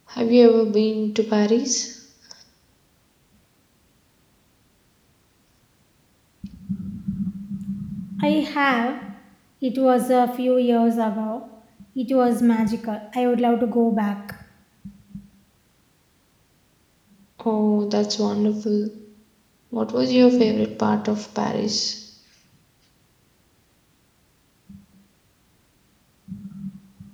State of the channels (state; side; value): identical; both; correlation 1.00